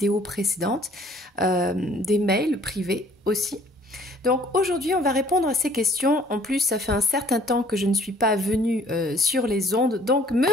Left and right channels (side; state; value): both; normal; correlation 0.57